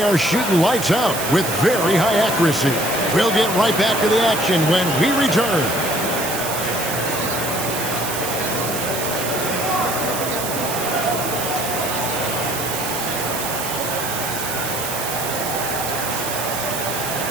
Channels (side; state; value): right; noise; hiss, 5 dB below the sound